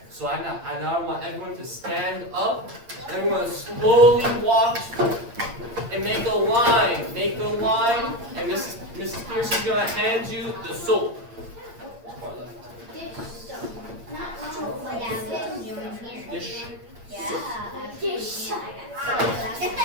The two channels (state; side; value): late; left; 8.6 ms